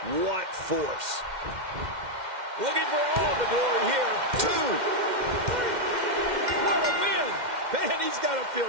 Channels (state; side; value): late; left; 2.1 ms